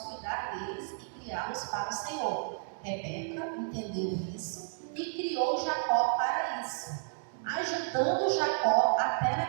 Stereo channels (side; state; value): left; silent; digital silence